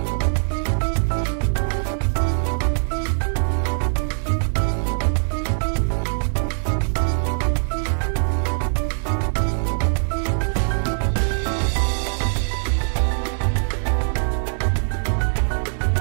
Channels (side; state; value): left; silent; 59 dB below the other